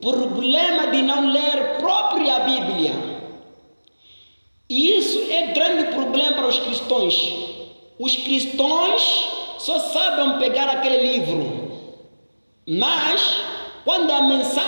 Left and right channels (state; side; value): inverted; both; correlation -1.00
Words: problema de não ler própria Bíblia. E isso é grande problema para os cristãos. Os cristãos só sabem pegar aquele livro, mas quando a